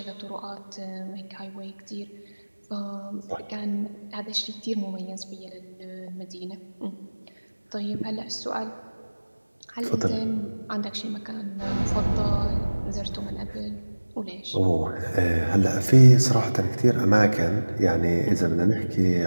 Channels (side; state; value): both; inverted; correlation -1.00